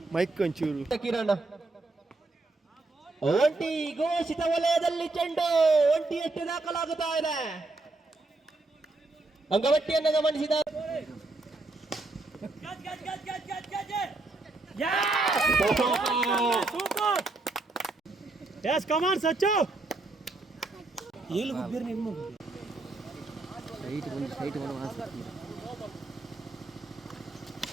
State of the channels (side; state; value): left; quieter; 3.2 dB